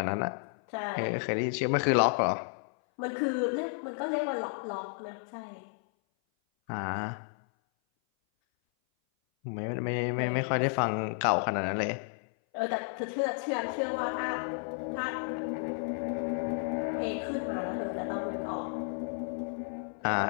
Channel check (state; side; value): silent; right; 56 dB below the other